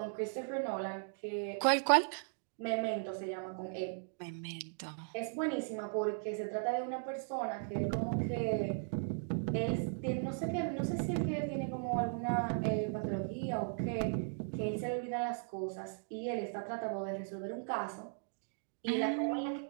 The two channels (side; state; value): left; silent; digital silence